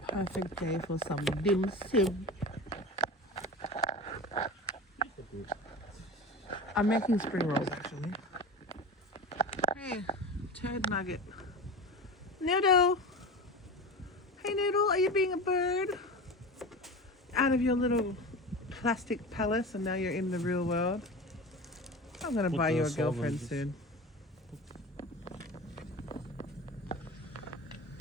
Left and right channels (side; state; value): both; normal; correlation 0.30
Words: Perfect day for some dim sum. I'm making spring rolls actually. Hey, turd nugget. Noodle! Hey Noodle, are you being a bird? Out of your little plastic palace and now you're in the real world. I'm gonna buy you a girlfriend soon.